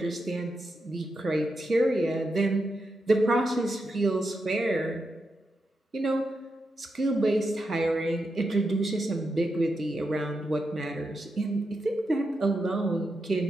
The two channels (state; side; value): normal; both; correlation 0.86